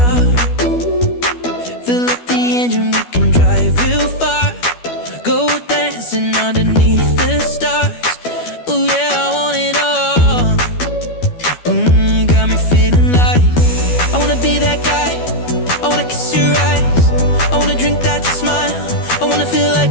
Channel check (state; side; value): late; right; 12 ms